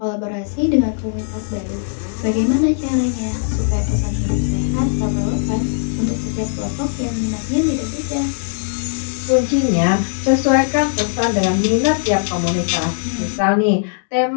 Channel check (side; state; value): right; silent; digital silence